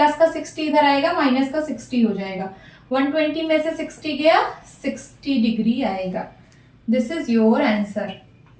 का 60 इधर आएगा, माइनस का 60 हो जाएगा। 120 में से 60 गया, 60 डिग्री आएगा। This is your answer.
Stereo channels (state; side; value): identical; both; correlation 1.00